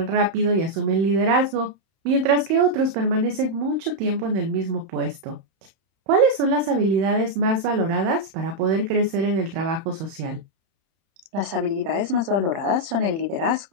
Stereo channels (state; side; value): late; left; 31 ms